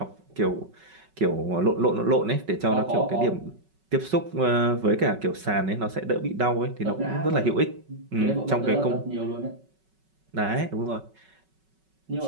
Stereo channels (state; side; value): late; left; 5.3 ms